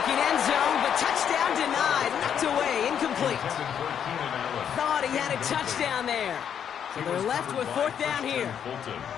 end zone, but touchdown denied. Knocked away, incomplete. Thought he had a touchdown there. So they're left with 4th down here.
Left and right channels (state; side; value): quieter; right; 8.5 dB